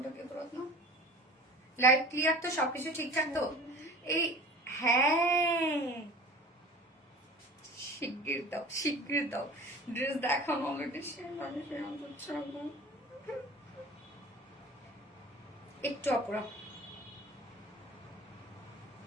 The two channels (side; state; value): both; normal; correlation 0.41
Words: কি করত না? লাইভ ক্লিয়ার তো? সবকিছু ঠিকঠাক তো? এই হ্যাঁ শিগগির দাও, শিগগির দাও। ড্রেস দেখানো অলরেডি একটু আপুরা।